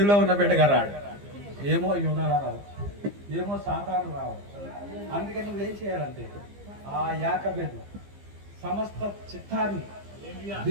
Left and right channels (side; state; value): left; late; 15 ms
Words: ఉన్న బిడ్డగా రాడు. ఏమో యోధాలా రావచ్చు, ఏమో సాతాను రావచ్చు. అందుకని నువ్వేం చేయాలంటే ఆ యాకోబు సమస్త చిత్తాన్ని